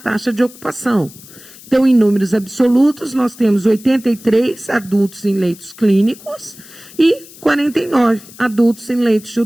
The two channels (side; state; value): left; noise; hiss, 20 dB below the sound